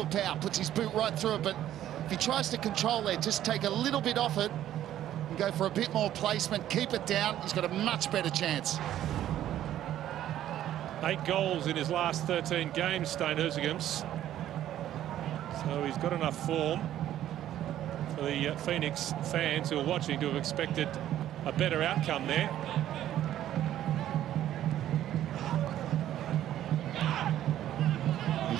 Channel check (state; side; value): quieter; left; 12.1 dB